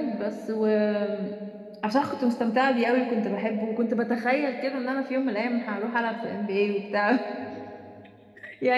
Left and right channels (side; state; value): both; identical; correlation 1.00